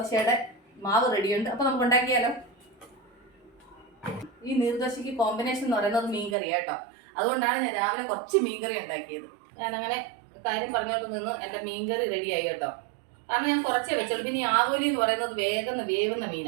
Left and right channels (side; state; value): left; drops out; at 6.4 s